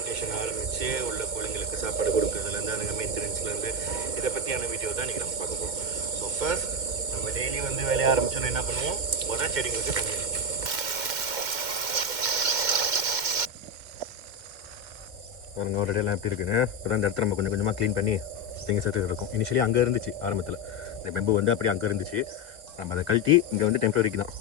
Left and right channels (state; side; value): late; left; 2.1 ms